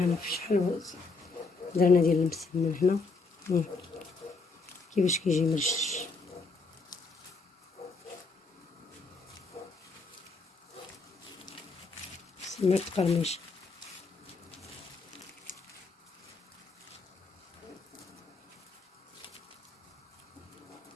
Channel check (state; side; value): quieter; right; 4.0 dB